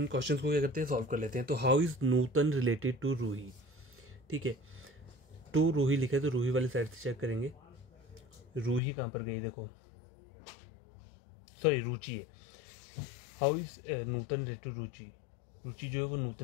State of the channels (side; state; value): right; drops out; at 8.8 s